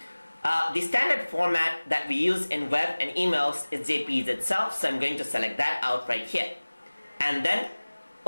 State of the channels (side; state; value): both; inverted; correlation -1.00